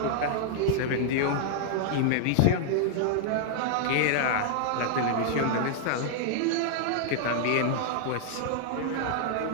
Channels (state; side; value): different; both; correlation -0.01